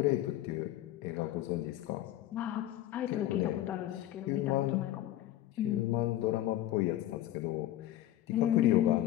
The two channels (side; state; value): right; quieter; 13.7 dB